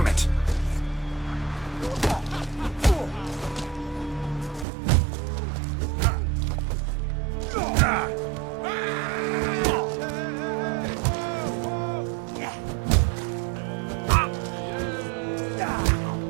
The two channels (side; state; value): left; drops out; at 4.7 s